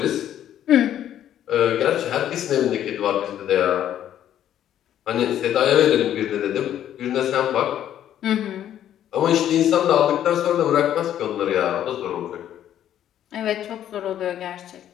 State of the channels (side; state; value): right; quieter; 11.0 dB